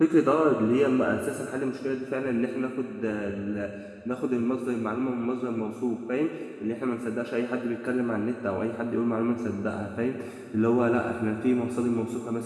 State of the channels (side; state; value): both; identical; correlation 1.00